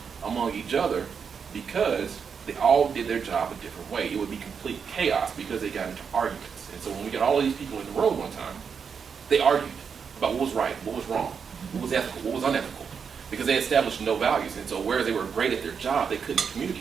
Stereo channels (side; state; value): left; quieter; 6.4 dB